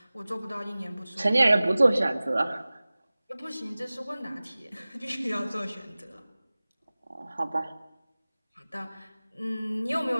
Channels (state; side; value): inverted; both; correlation -0.98